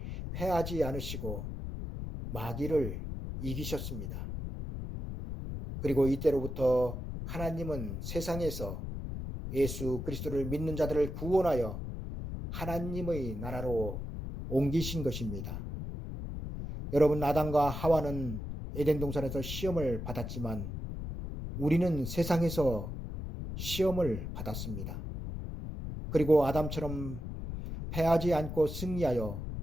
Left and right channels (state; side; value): noise; left; rumble, 6 dB below the sound